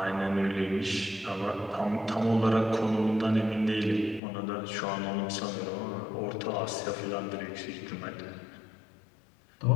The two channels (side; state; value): right; drops out; at 4.2 s